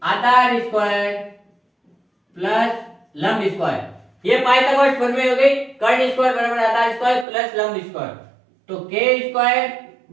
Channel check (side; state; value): left; drops out; at 7.2 s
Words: आधार स्क्वायर प्लस लंब स्क्वायर। ये पाइथागोरस प्रमेय हो गई। कर्ण स्क्वायर बराबर आधार स्क्वायर प्लस लंब स्क्वायर। तो के स्क्वायर